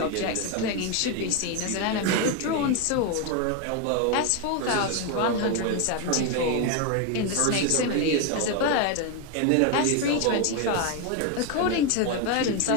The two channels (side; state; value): both; different; correlation 0.02